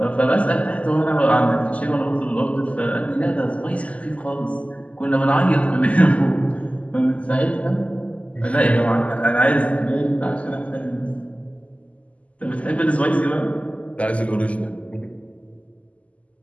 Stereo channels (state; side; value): late; right; 0.067 ms